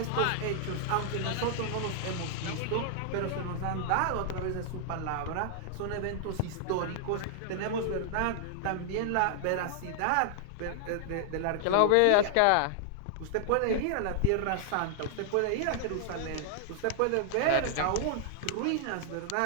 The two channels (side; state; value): both; different; correlation -0.01